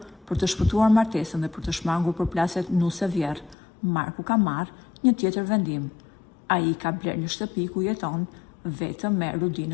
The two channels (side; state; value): right; drops out; at 3.6 s